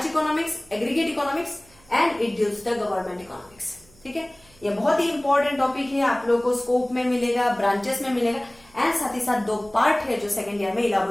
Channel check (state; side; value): noise; right; hum, 28 dB below the sound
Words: economics, aggregate economics, and it deals the government economics. ठीक है, ये बहुत ही इंपॉर्टेंट टॉपिक है, आप लोगों को स्कोप में मिलेगा, ब्रांचेस में मिलेगा, एंड साथ ही साथ 2 पार्ट है जो सेकेंड ईयर में